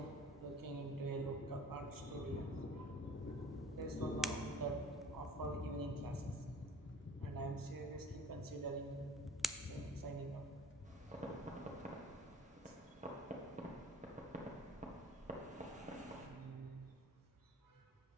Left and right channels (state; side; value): normal; both; correlation 0.48